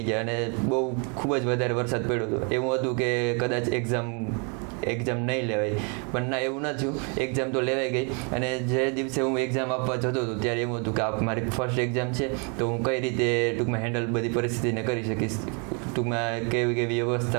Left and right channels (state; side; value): quieter; left; 35.8 dB